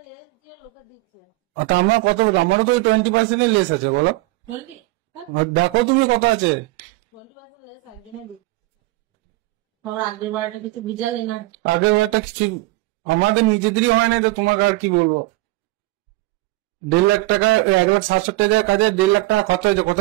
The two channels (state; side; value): quieter; left; 20.4 dB